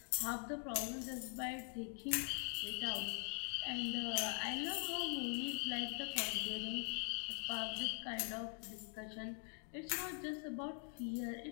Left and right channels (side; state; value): right; quieter; 37.9 dB